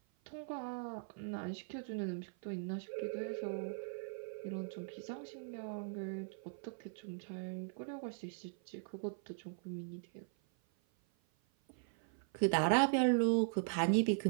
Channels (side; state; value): left; silent; 51 dB below the other